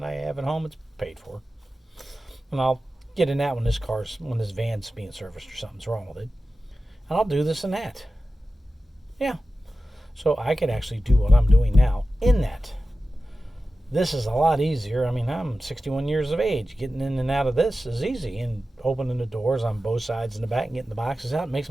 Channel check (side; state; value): both; normal; correlation 0.94